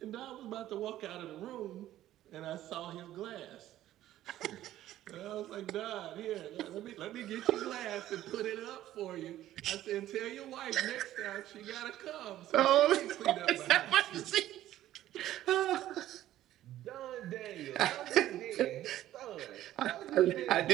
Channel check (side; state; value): left; quieter; 13.5 dB